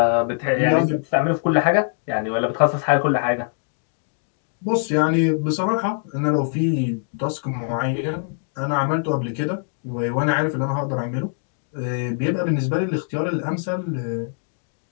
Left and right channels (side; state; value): right; silent; digital silence